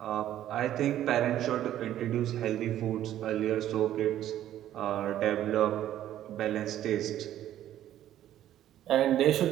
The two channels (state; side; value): quieter; left; 12.1 dB